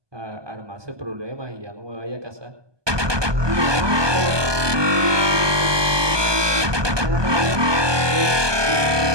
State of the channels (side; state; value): left; late; 1.2 ms